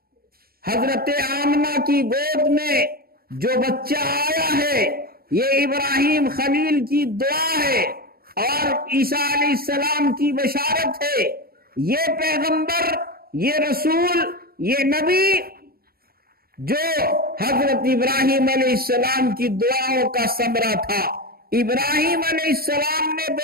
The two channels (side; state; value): left; late; 0.44 ms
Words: حضرت آمنہ کی گود میں جو بچہ آیا ہے یہ ابراہیم خلیل کی دعا ہے اور عیسیٰ علیہ السلام کی بشارت ہے۔ یہ پیغمبر، یہ رسول، یہ نبی جو حضرت ابراہیم علیہ السلام کی دعاؤں کا ثمرہ تھا۔ ابراہیم علیہ السلام نے